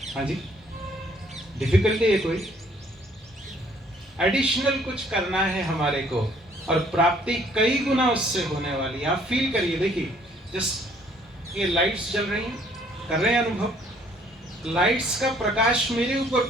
हाँ जी, डिफिकल्टी है कोई? एडिशनल कुछ करना है हमारे को, और प्राप्ति कई गुना उससे होने वाली है। आप फील करिए, देखिए जस्ट ये लाइट्स जल रही हैं, कर रहे हैं अनुभव, लाइट्स का प्रकाश मेरे ऊपर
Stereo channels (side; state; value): both; normal; correlation 0.61